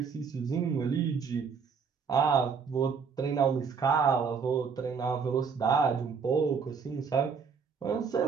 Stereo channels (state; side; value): quieter; left; 5.9 dB